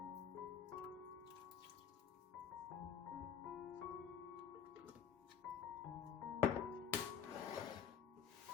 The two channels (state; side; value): quieter; right; 7.9 dB